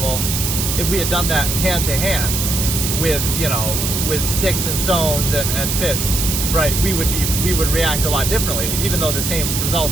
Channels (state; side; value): noise; right; hiss, 1 dB below the sound